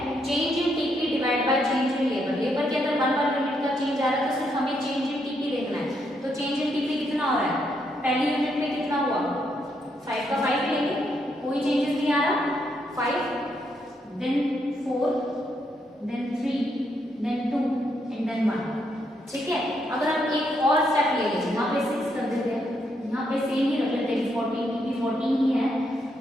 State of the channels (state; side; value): normal; both; correlation 0.77